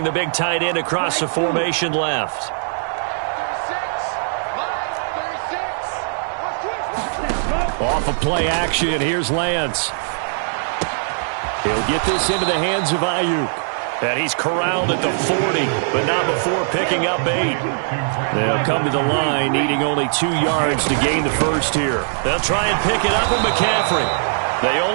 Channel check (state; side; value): silent; left; digital silence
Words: the big tight end across the formation left. Off of play action, here's Lance. He'll get this into the hands of Ayuk. And he's corralled at the 40, but not before picking up 8. They'll come to the line, needing only 2 yards to gain the first here. They'll try and pick it up with McCaffrey. They